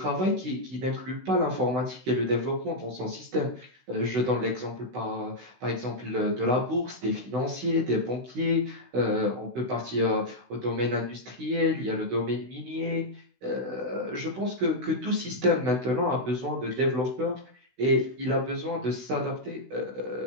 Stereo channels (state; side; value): late; left; 16 ms